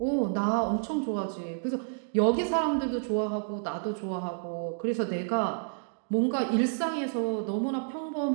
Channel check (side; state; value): left; silent; digital silence